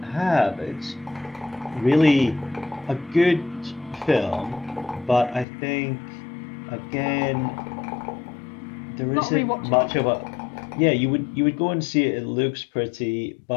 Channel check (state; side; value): drops out; right; at 5.5 s